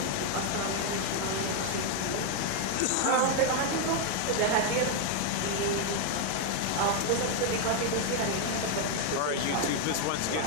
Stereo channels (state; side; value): different; both; correlation 0.00